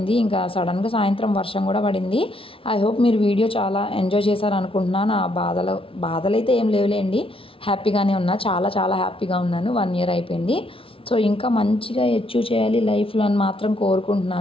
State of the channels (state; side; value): late; right; 0.26 ms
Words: ఇంకా సడన్గా సాయంత్రం వర్షం కూడా పడింది. ఐ హోప్ మీరు వీడియో చాలా ఎంజాయ్ చేశారు అనుకుంటున్నాను. ఆ బాధలు అయితే ఏం లేవులేండి, హ్యాపీగానే ఉన్నా, చాలా చాలా హ్యాపీగా ఉన్నాను. 1 year అయిపోయింది. సో ఇంకా మంచిగా అచీవ్ చేయాలి లైఫ్లో అని మాత్రం